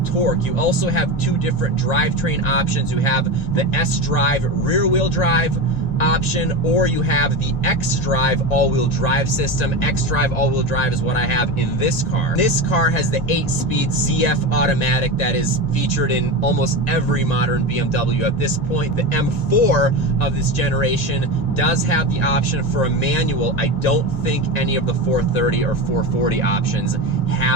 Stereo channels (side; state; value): right; late; 1.9 ms